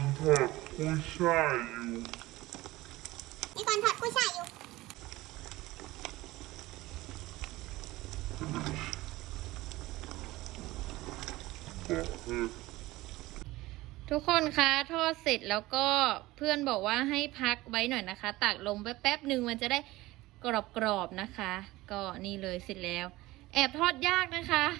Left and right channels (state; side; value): quieter; left; 18.7 dB